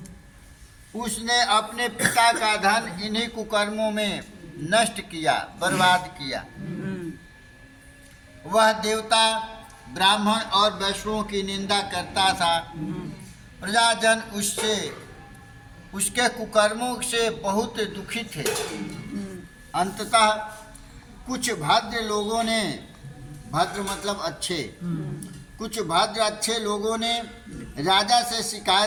उसने अपने पिता का धन इन्हीं कुकर्मों में नष्ट किया, बर्बाद किया। वह देवता, ब्राह्मण और वैष्णवों की निंदा करता था। प्रजाजन उसके कुकर्मों से बहुत दुखी थे। अंततः कुछ भद्र लोगों ने, भद्र मतलब अच्छे, कुछ भद्र अच्छे लोगों ने राजा से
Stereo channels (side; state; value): both; identical; correlation 1.00